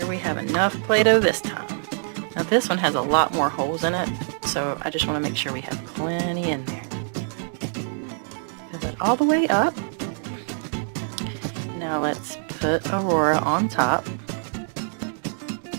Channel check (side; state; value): left; silent; digital silence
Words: we have enough Play-Doh this time. Now this one has a lot more holes in it, so I just want to make sure we have plenty in there. Have it all the way up. Now let's put Aurora on top.